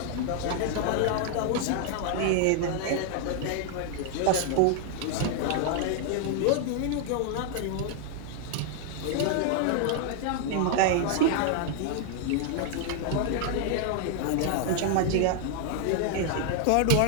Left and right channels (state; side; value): different; both; correlation 0.00